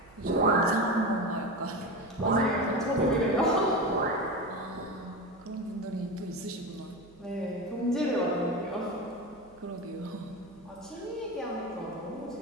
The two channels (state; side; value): noise; right; hum, 27 dB below the sound